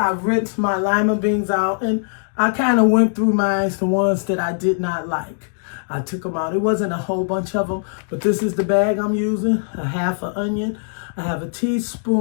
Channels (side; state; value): right; silent; digital silence